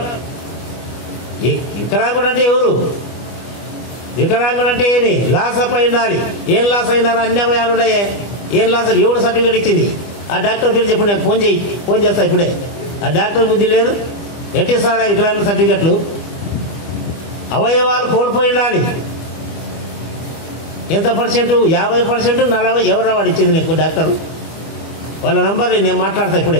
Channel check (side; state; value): right; late; 24 ms